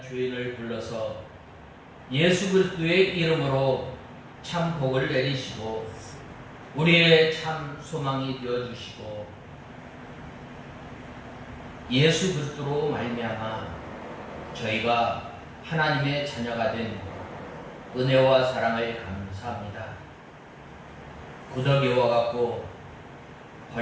죄인을 불러서 예수 그리스도의 이름으로 참 복을 내리시고 우리의 참 소망이 되어주시고 예수 그리스도로 말미암아 저희가 하나님의 자녀가 된 은혜와 사랑을 감사합니다. 구더기와 같고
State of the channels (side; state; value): both; identical; correlation 1.00